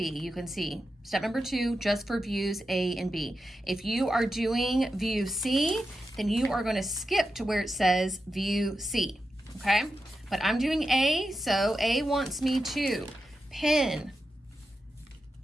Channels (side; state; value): both; normal; correlation 0.90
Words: You can see step number 2, just for views A and B. If you are doing view C, then you are going to skip to where it says view C, okay? But I'm doing A, so A wants me to pin